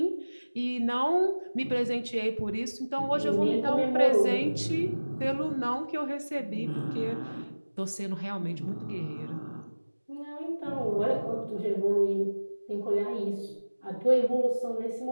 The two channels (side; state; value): both; inverted; correlation -1.00